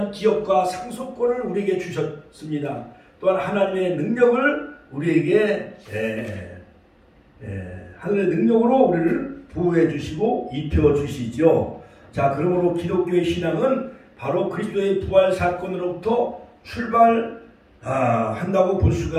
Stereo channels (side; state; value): both; identical; correlation 1.00